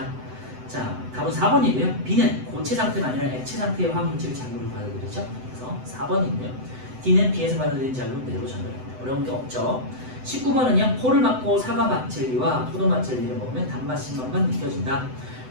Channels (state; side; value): late; left; 7.9 ms